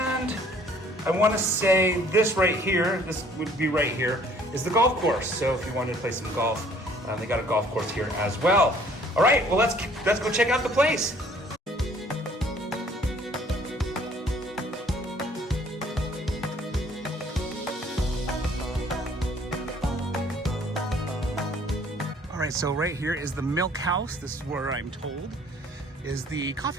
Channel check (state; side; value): normal; both; correlation 0.57